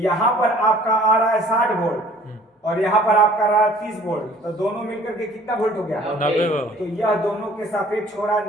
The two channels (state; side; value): normal; both; correlation 0.53